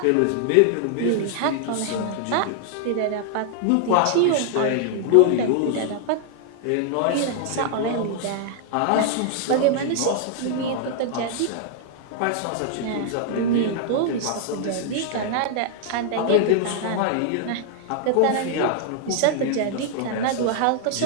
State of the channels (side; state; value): both; different; correlation 0.00